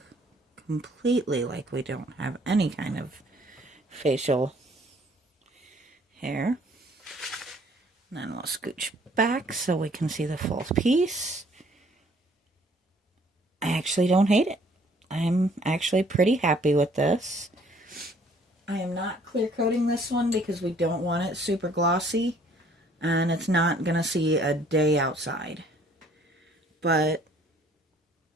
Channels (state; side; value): normal; both; correlation 0.60